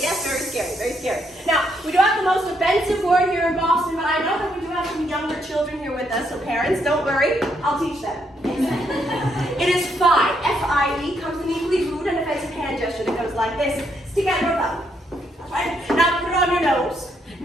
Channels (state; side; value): normal; both; correlation 0.75